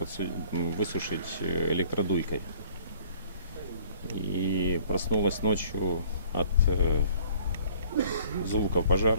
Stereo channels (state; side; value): inverted; both; correlation -0.55